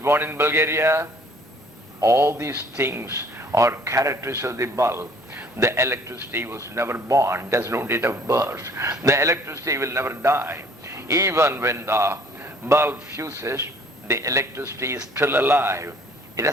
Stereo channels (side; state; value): both; normal; correlation 0.56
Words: in Bulgaria. All these things are characteristics of the bulb. The electricity was never born, there's no date of birth. The electricity will never die. Even when the bulb fuses, the electricity is still alive. It